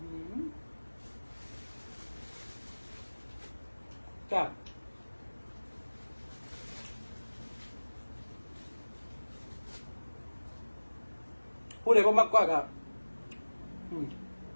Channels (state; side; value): inverted; both; correlation -1.00